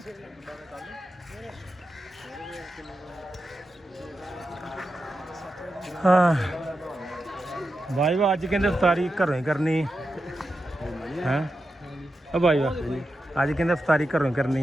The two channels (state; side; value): normal; both; correlation 0.89